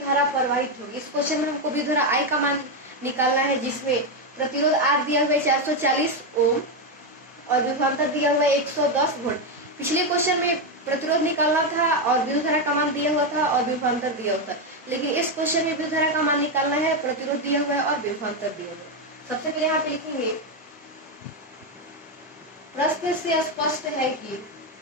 प्रवाहित होगी। इस क्वेश्चन में हमको विद्युत धारा I का मान निकालना है, जिसमें प्रतिरोध R दिया हुआ है 440 ओम और विभवांतर दिया हुआ है 110 वोल्ट। पिछले क्वेश्चन में प्रतिरोध निकालना था और विद्युत धारा का मान दिया हुआ था और विभवांतर दिया हुआ था, लेकिन इस क्वेश्चन में विद्युत धारा का मान निकालना है, प्रतिरोध दिया हुआ है और विभवांतर दिया हुआ है। सबसे पहले यहाँ पे लिखेंगे, प्रश्न से स्पष्ट है कि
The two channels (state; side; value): normal; both; correlation 0.07